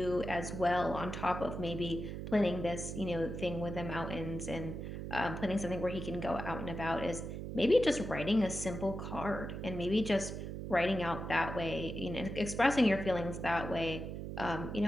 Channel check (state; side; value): noise; right; hum, 6 dB below the sound